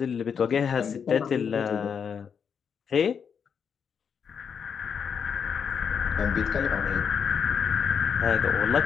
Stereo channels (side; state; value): right; quieter; 6.9 dB